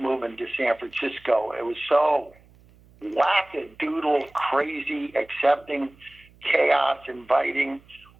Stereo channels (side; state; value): right; noise; hum, 28 dB below the sound